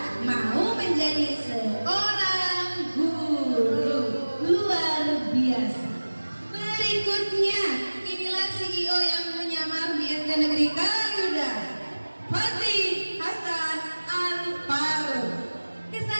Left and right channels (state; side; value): inverted; both; correlation -1.00